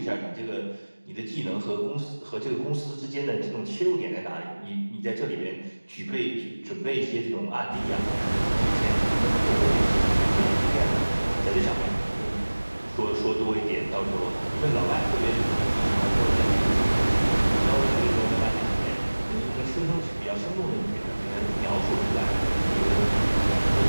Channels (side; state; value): both; inverted; correlation -1.00